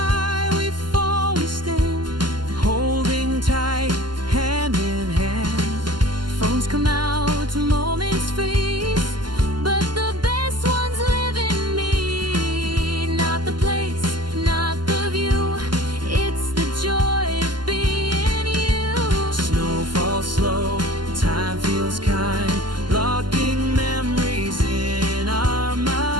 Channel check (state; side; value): late; left; 0.71 ms